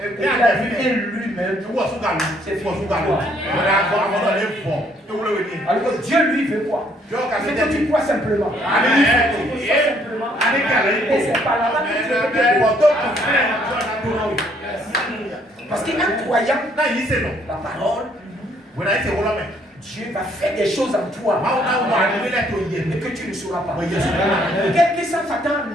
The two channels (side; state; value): both; normal; correlation 0.66